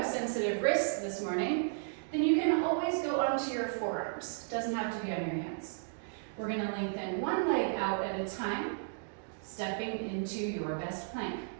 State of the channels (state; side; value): silent; left; digital silence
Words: sensitive wrists this morning, then you can always go onto your forearms. Doesn't have to be on your hands. We're gonna lengthen one leg out at a time, stepping into your best plank.